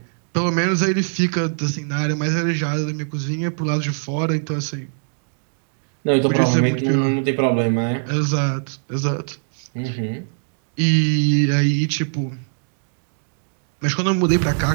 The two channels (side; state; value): left; silent; digital silence